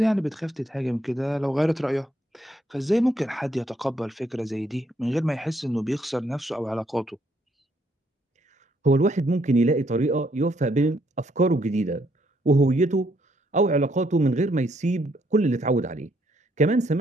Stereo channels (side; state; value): both; normal; correlation 0.72